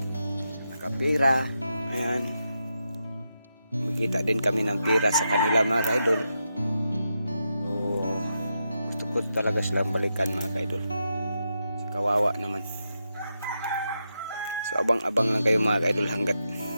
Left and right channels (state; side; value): inverted; both; correlation -0.86